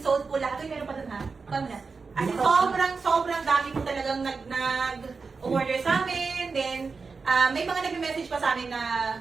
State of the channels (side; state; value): left; quieter; 4.6 dB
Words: sold po lahat. Uy, meron pa dun ha? Paano na? As in, sobrang dami po talagang nag-order sa amin. Then, may mga nag-message pa sa amin na